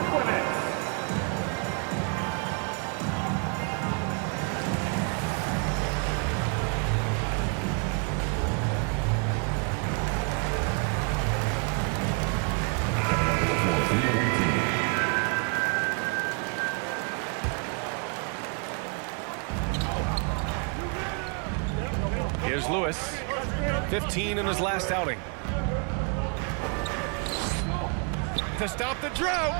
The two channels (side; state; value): left; quieter; 36.8 dB